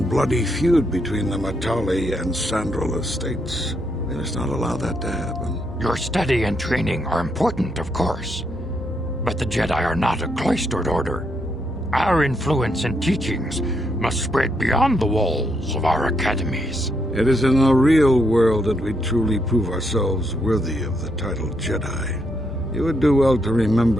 bloody feud between the Matali and Sandral estates. We must not allow that to happen. Your study and training are important, of course, but the Jedi are not a cloistered order. Our influence and teachings must spread beyond the walls of our academies. It is in the real world that we truly prove ourselves worthy of the title Jedi. You would do well to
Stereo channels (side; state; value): both; normal; correlation 0.77